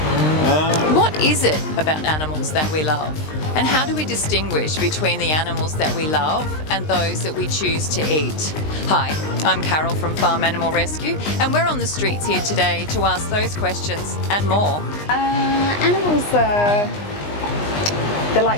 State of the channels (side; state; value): right; late; 20 ms